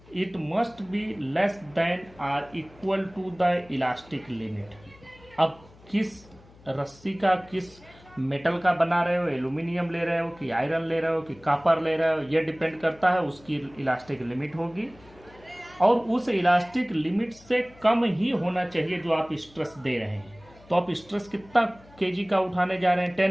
it must be less than or equal to the elastic limit. अब किस रस्सी का, किस मेटल का बना रहे हो, एल्यूमिनियम ले रहे हो कि आयरन ले रहे हो कि कॉपर ले रहे हो, ये डिपेंड करता है, उसकी इलास्टिक लिमिट होगी, और उस इलास्टिक लिमिट से कम ही होना चाहिए जो आप स्ट्रेस दे रहे हैं। तो आप स्ट्रेस कितना केजी का उठाने जा रहे हैं,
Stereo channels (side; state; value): left; noise; hum, 25 dB below the sound